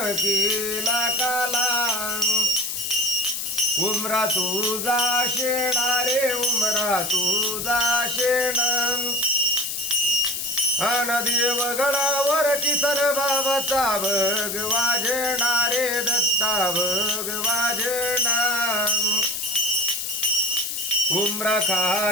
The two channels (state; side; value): noise; left; hiss, 4 dB below the sound